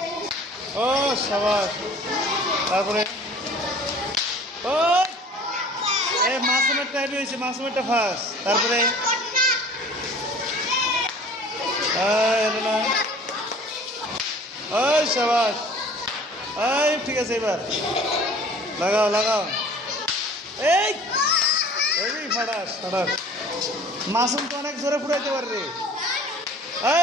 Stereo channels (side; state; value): both; normal; correlation 0.47